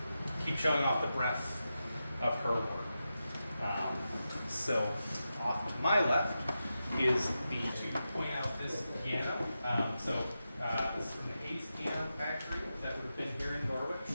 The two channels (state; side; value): inverted; both; correlation -0.90